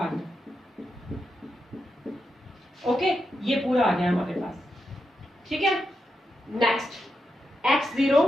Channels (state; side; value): normal; both; correlation 0.86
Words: गया। ओके, ये पूरा आ गया हमारे पास, ठीक है। Next x0